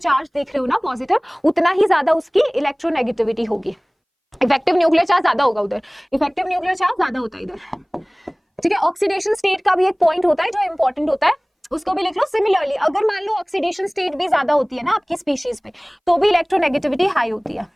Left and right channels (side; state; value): both; identical; correlation 1.00